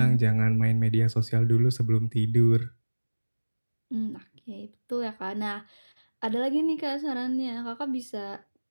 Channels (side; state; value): both; inverted; correlation -1.00